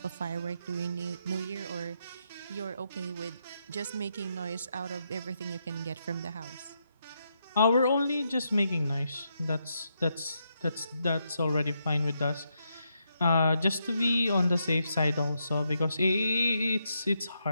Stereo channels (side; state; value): both; inverted; correlation -0.81